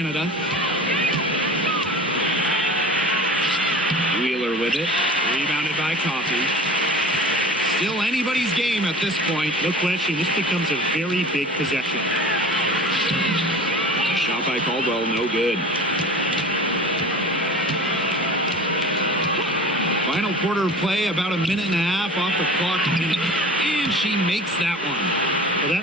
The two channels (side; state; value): both; normal; correlation 0.39